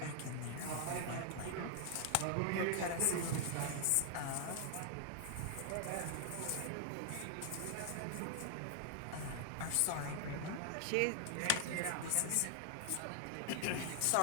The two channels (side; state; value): both; different; correlation 0.00